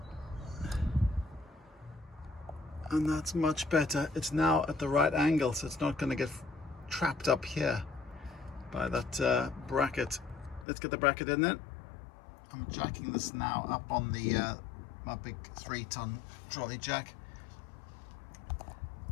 And that's much better. It's now at the right angle, so it's not going to get trapped up here by that bracket. Let's get the bracket in then. I'm jacking this now up on the my big 3-ton trolley jack.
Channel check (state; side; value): drops out; right; at 10.7 s